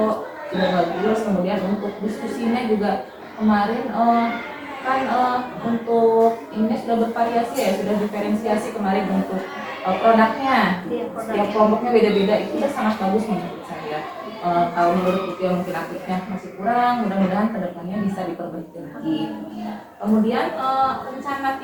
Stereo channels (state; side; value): identical; both; correlation 1.00